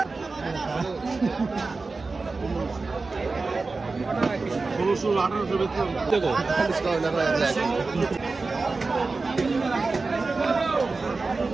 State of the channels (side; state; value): left; quieter; 3.9 dB